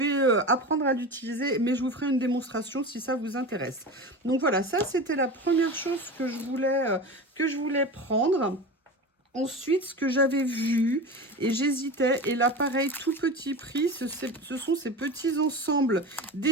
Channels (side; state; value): both; normal; correlation 0.29